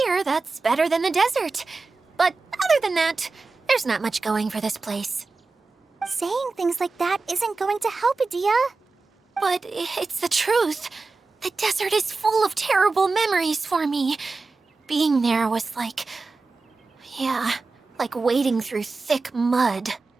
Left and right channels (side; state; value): left; quieter; 3.9 dB